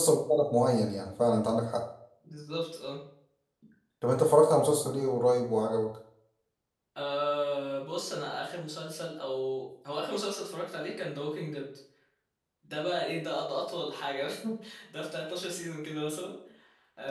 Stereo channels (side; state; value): both; identical; correlation 1.00